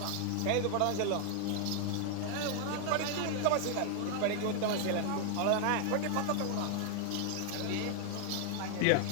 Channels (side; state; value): both; different; correlation 0.00